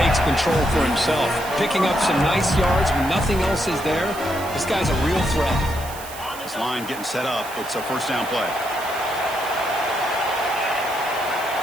control for himself. Picking up some nice yards when nothing else is there. This guy's a real threat. This line getting set up. It's a first down play.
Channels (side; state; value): right; noise; hiss, 14 dB below the sound